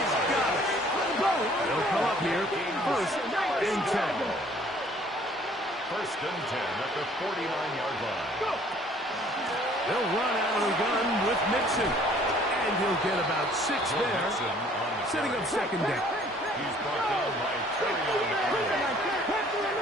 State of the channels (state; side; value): normal; both; correlation 0.57